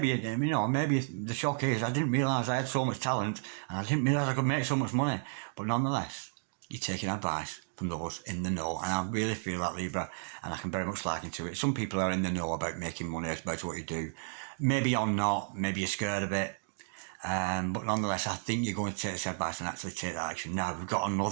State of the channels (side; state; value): left; silent; digital silence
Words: you know, maybe the shock is I didn't realise I had so much talent and I didn't realise I could make so much money. But nonetheless, you're taking advice from those in the know, and I really feel that, Libra, and I can very much liken to it. Some people are in the know about making money, about what you do. Maybe you're not, maybe you're scared of it, but nonetheless, I think you're going to take this advice and actually take that action. Now, we've got